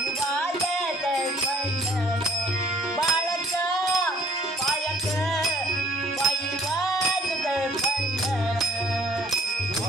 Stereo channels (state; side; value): normal; both; correlation 0.57